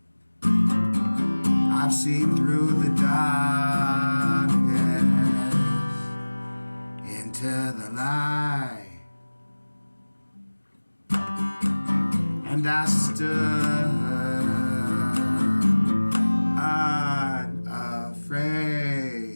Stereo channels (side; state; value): both; inverted; correlation -1.00